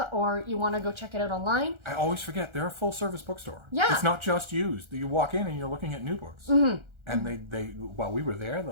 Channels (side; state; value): left; late; 1.4 ms